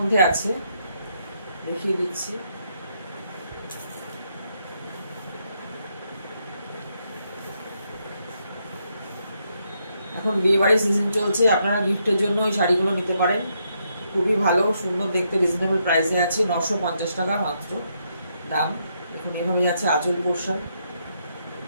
আছে, দেখিয়ে দিচ্ছি। এখন বিয়ে বাড়ির সিজন চলছে, আপনারা গিফটের জন্য ওই শাড়িগুলো নিতে পারেন। খুবই ভালো, সুন্দর দেখতে, রিজনেবল প্রাইসে আছে, 950 টাকা মাত্র দাম। দেখুন এভাবে যাচ্ছে আঁচল পোর্শন,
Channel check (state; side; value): inverted; both; correlation -0.77